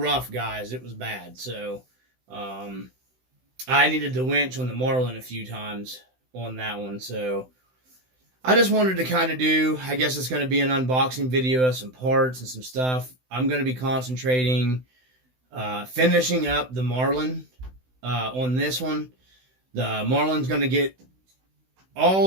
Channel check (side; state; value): left; late; 16 ms